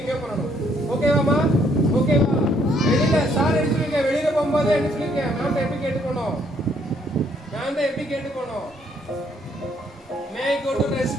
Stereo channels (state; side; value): normal; both; correlation 0.68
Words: பண்ணணும் ஓகேவாமா ஓகேவா வெளியில சார் எடுத்துருக்கேன் வெளியில போகும்போது என்ன சொல்லிருக்கேன் மேம் எப்படி கேட்டுக்கணும் மேம் எப்படி கேட்டுக்கணும் may go to